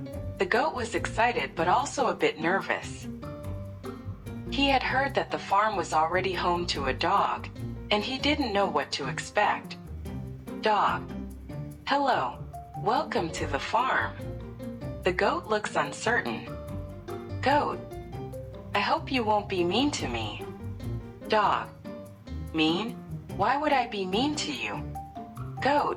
The goat was excited but also a bit nervous. He had heard that the farm was already home to a dog, and he didn't know what to expect. Dog. Hello. Welcome to the farm. The goat looks uncertain. Goat. I hope you won't be mean to me. Dog. Mean? Why would I be mean to you?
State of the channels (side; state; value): both; identical; correlation 1.00